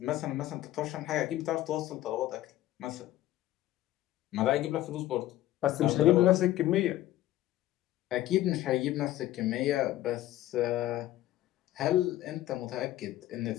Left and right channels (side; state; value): right; quieter; 14.6 dB